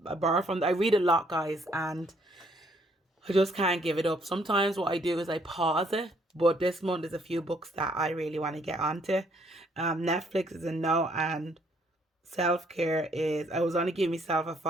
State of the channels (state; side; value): normal; both; correlation 0.67